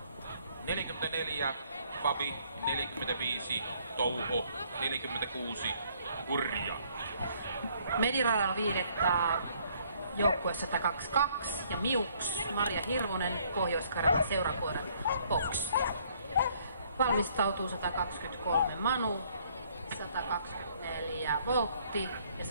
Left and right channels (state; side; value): inverted; both; correlation -0.64